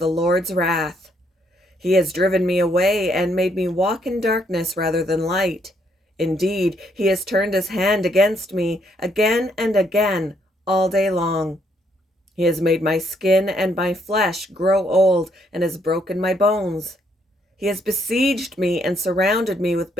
Lord's wrath. He has driven me away and made me walk in darkness rather than light. Indeed, he has turned his hand against me again and again all day long. He has made my skin and my flesh grow old and has broken my bones. He has besieged me and surrounded me with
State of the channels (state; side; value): normal; both; correlation 0.72